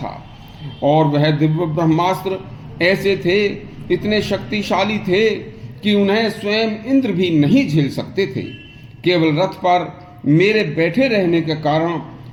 और वह दिव्य ब्रह्मास्त्र ऐसे थे, इतने शक्तिशाली थे कि उन्हें स्वयं इंद्र भी नहीं झेल सकते थे। केवल रथ पर मेरे बैठे रहने के कारण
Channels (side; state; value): both; identical; correlation 1.00